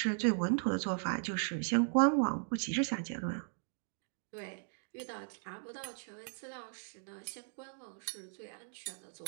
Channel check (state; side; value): silent; left; digital silence